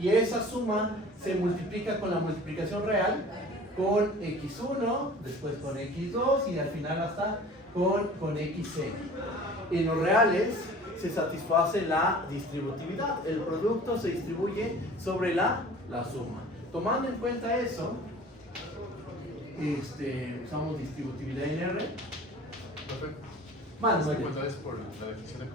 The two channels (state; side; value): normal; both; correlation 0.44